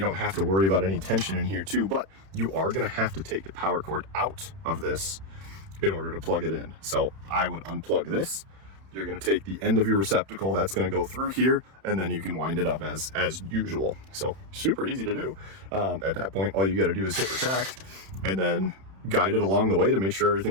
have to worry about any tension in here too. But you are going to have to take the power cord out of this in order to plug it in. So I would unplug this. You're going to take the end of your receptacle. That's going to go through here, and then you can wind it up as usual. So super easy to do. At that point, all you got to do is hit retract and then guide it along the way to make sure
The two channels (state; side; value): late; left; 31 ms